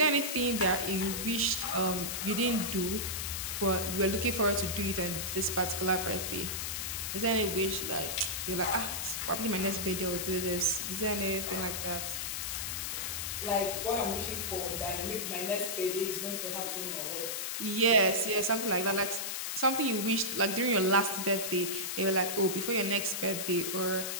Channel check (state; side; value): noise; left; hiss, 3 dB below the sound